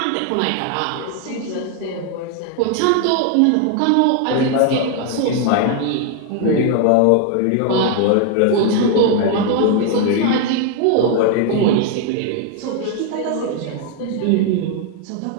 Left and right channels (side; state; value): both; different; correlation 0.00